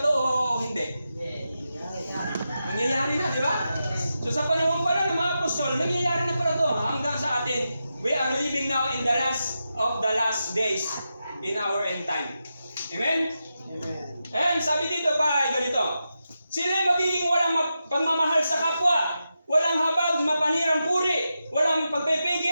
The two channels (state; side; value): inverted; both; correlation -0.89